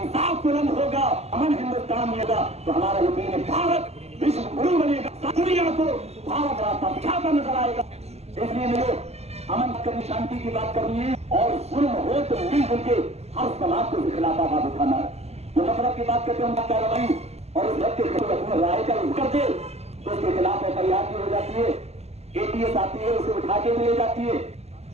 इंसाफ बुलंद होगा, अमन हिंदुस्तान में होगा, तो हमारा यकीन है भारत विश्व गुरु बनेगा, दुनिया को भारत रास्ता दिखाता नजर आएगा। इसलिए मेरे अमन करनी, शांति की बात करनी है, और जुल्म हो तो मिलजुल के हर समाज को खिलाफ आवाज उठाना है। जो नफरत की बात करते हैं कार्रवाई और उस के अपने राय का कर दे तो उसके खिलाफ एफआईआर भी हो जाती है, एटीएस आती है, उसे उठा के भी ले जाती है,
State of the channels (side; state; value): left; late; 0.30 ms